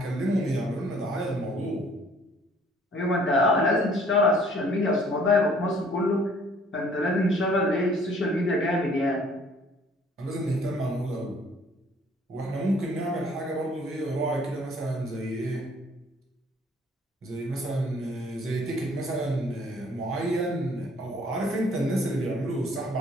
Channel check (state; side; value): normal; both; correlation 0.58